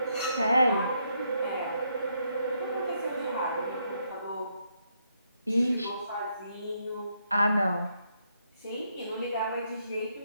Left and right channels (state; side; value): inverted; both; correlation -0.76